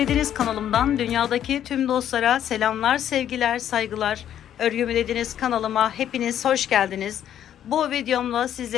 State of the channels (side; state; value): right; quieter; 10.4 dB